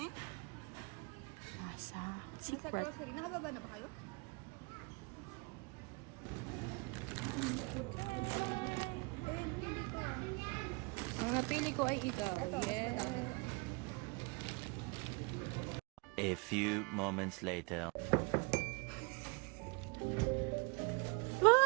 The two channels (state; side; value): quieter; left; 29.4 dB